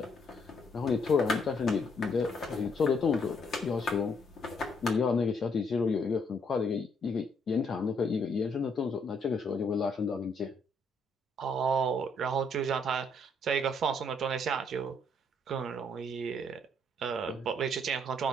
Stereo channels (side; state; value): both; normal; correlation 0.70